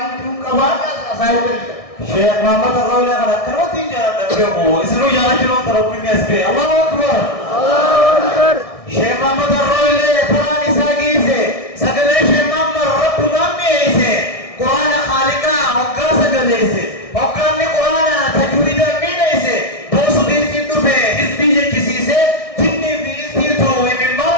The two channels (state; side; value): late; right; 1.6 ms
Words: توكبار أصايب شيخ محمد الرولي على كروتين جاء تبيعه اسمه جاء جلو تربي نسبة الله أكبر الله أكبر شيخ محمد الرولي قرآن ساقيسه سقلي شيخ محمد رب نميسه قرآن خالقا وقا سقليسه وقا قرآن تجويدا مينيسه بوسو دين سيدو في حزبي جيسيسه جني في سيدو من